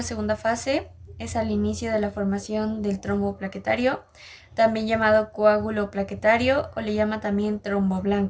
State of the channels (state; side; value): identical; both; correlation 1.00